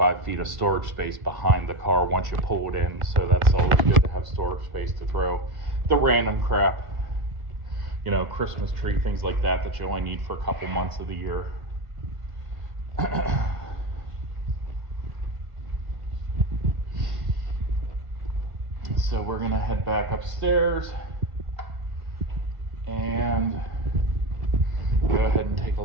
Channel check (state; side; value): late; left; 1.6 ms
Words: feet of storage space behind the car once you pull it in, so that's always good to have storage space to throw the random crap, Christmas tree, things like that you only need for a couple months of the year. So we're gonna head back upstairs and go ahead and take a